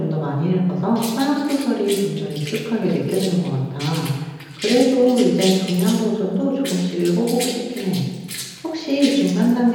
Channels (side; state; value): both; identical; correlation 1.00